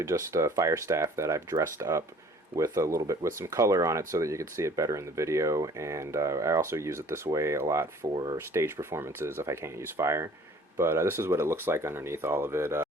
just a fire staff that I've dressed up with a little bit with some color on it so that you could see it better in the video, and I also use it this way a lot for stage performances if I can't use fire. But this is what it looks like underneath all of it.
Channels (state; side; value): normal; both; correlation 0.52